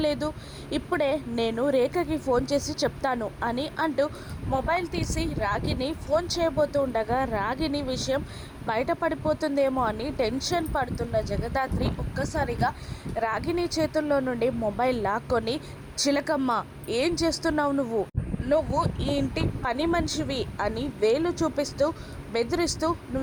ఇప్పుడే నేను రేఖకి ఫోన్ చేసి చెప్తాను అని అంటూ మొబైల్ తీసి రాగిని ఫోన్ చేయబోతూ ఉండగా రాగిని విషయం బయటపడిపోతుందేమో అని టెన్షన్ పడుతున్న జగదాత్రి ఒక్కసారిగా రాగిని చేతుల్లో నుండి మొబైల్ లాక్కొని, చిలకమ్మ ఏం చేస్తున్నావు నువ్వు? నువ్వు ఈ ఇంటి పని మనిషివి అని వేలు చూపిస్తూ బెదిరిస్తూ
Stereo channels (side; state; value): both; identical; correlation 1.00